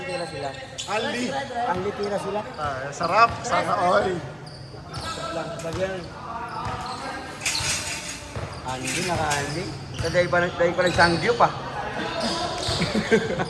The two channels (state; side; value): identical; both; correlation 1.00